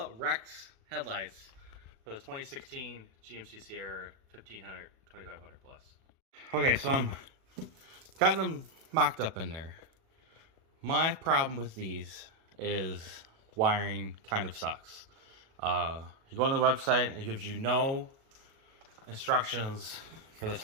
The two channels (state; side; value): late; left; 37 ms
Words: Rex headlights for the 2016 GMC Sierra 1500, 2500 plus. Okay, so I'm got them mocked up in there. My problem with these is wiring kind of sucks. You go on the website, it gives you no instructions for this